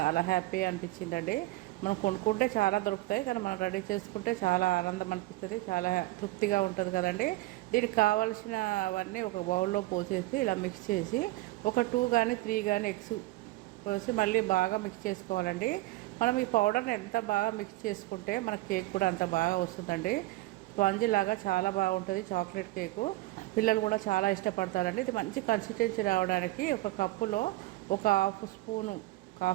హ్యాపీ అనిపించిందండి. మనం కొనుక్కుంటే చాలా దొరుకుతాయి, కానీ మనం రెడీ చేసుకుంటే చాలా ఆనందం అనిపిస్తుంది, చాలా తృప్తిగా ఉంటుంది కదండి. దీనికి కావాల్సినవన్నీ ఒక బౌల్లో పోసేసి ఇలా మిక్స్ చేసి ఒక 2 కానీ 3 కానీ ఎగ్స్ పోసి మళ్ళీ బాగా మిక్స్ చేసుకోవాలండి. మనం ఈ పౌడర్ని ఎంత బాగా మిక్స్ చేసుకుంటే మన కేక్ కూడా అంత బాగా వస్తుందండి. స్పాంజీ లాగా చాలా బాగుంటుంది చాక్లెట్ కేకు. పిల్లలు కూడా చాలా ఇష్టపడతారండి. ఇది మంచి కన్సిస్టెన్సీ రావడానికి ఒక కప్పులో ఒక హాఫ్ స్పూను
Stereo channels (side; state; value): left; quieter; 18.7 dB